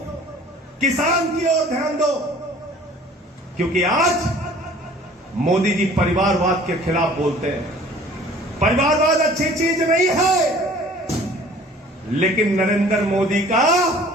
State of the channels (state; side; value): normal; both; correlation 0.50